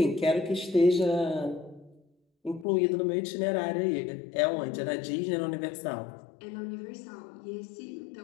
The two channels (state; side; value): drops out; right; at 2.7 s